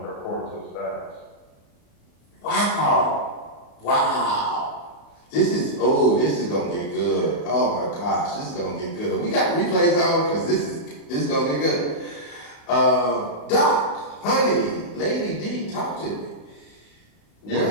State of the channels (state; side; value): late; right; 35 ms